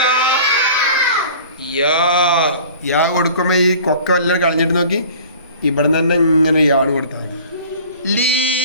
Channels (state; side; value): inverted; both; correlation -0.45